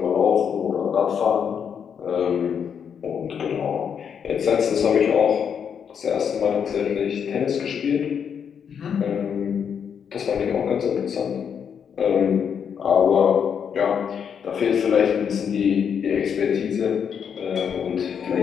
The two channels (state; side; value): quieter; right; 7.5 dB